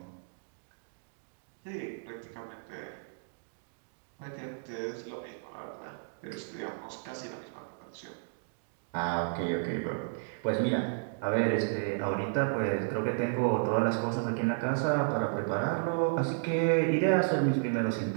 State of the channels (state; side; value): silent; left; digital silence